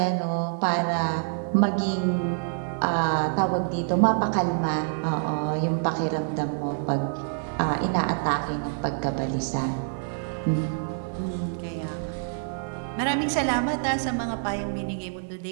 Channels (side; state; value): left; silent; 57 dB below the other